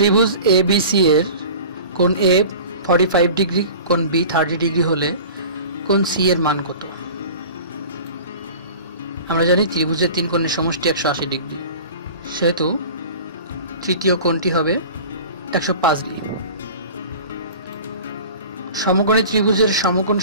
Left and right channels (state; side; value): inverted; both; correlation -0.39